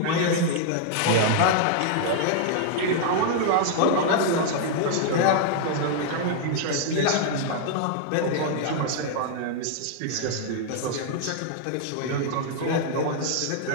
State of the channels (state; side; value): different; both; correlation -0.01